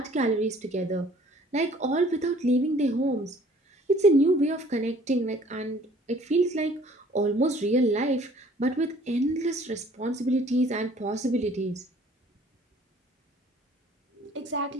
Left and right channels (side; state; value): both; normal; correlation 0.55